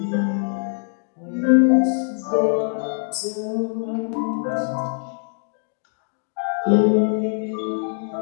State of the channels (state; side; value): silent; right; digital silence